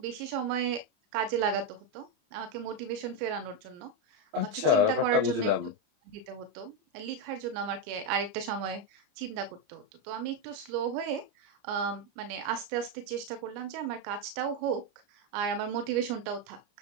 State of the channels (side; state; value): left; late; 29 ms